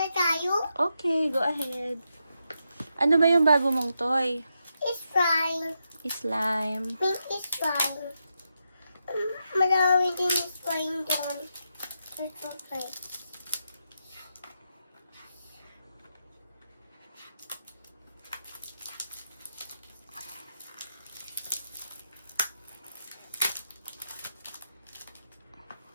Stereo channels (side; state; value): both; inverted; correlation -0.85